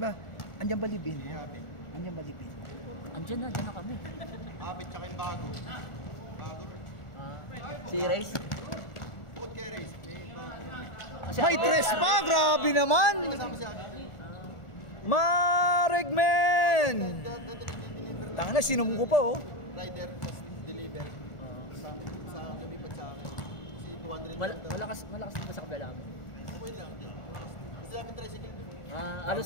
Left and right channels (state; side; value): late; right; 1.4 ms